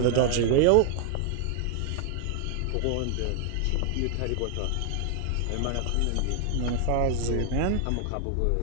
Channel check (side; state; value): both; different; correlation 0.00